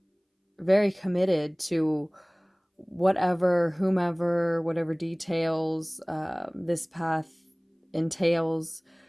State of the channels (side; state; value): both; identical; correlation 1.00